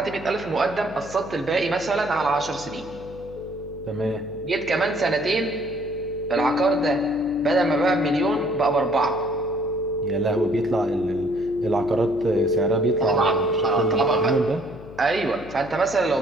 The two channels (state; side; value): noise; left; hum, 16 dB below the sound